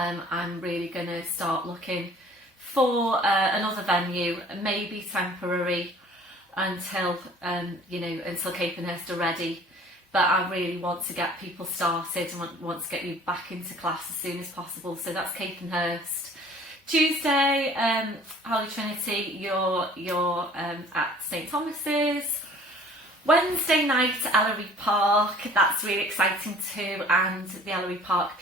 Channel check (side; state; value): both; normal; correlation 0.50